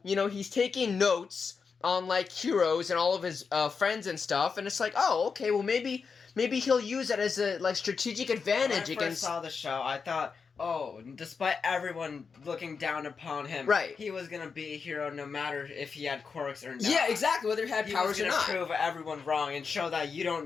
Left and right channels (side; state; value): right; quieter; 5.4 dB